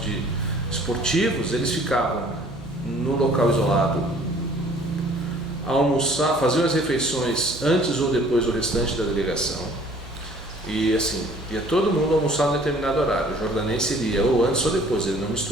esportivos, eles ficavam no local isolado, almoçar, faziam as refeições antes ou depois do restante da delegação, e assim, ia todo mundo almoçar em determinado horário. O jordanense iria ou antes ou depois, ele não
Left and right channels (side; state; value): right; noise; hum, 22 dB below the sound